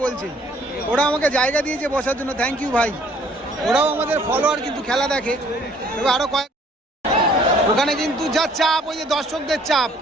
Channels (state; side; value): normal; both; correlation 0.59